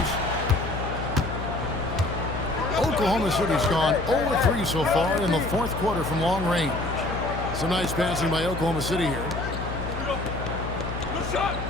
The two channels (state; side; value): noise; left; hum, 6 dB below the sound